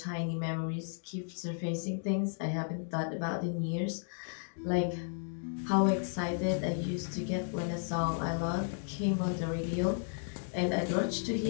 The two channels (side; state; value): right; silent; digital silence